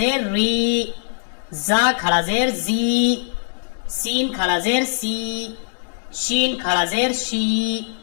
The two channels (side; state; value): right; silent; digital silence